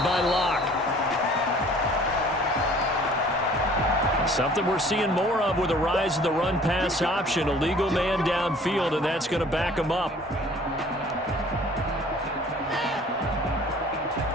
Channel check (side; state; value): both; normal; correlation 0.52